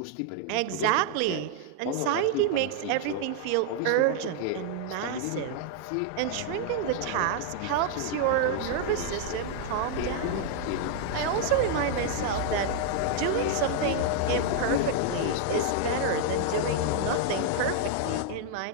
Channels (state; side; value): different; both; correlation 0.00